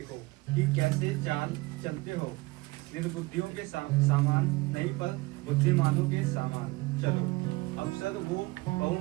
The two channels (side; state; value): left; quieter; 22.6 dB